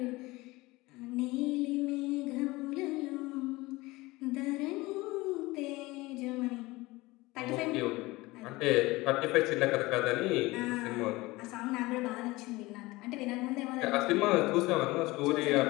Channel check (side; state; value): right; quieter; 21.0 dB